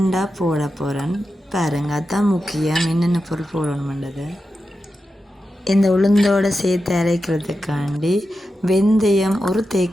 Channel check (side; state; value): both; normal; correlation 0.90